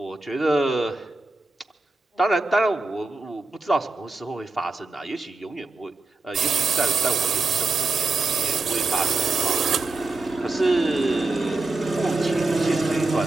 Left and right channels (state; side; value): quieter; left; 3.4 dB